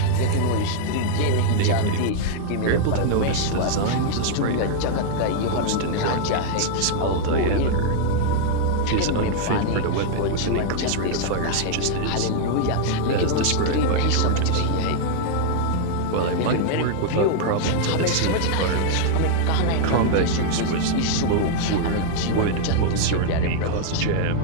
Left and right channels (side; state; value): both; different; correlation -0.01